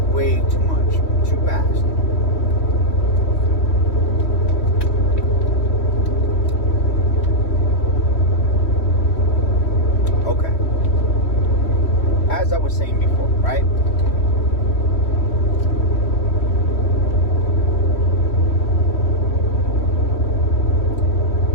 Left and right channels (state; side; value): late; right; 3.1 ms